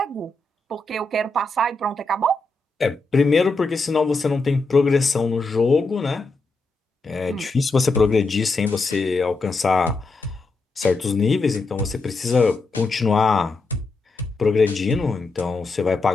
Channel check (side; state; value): right; quieter; 3.2 dB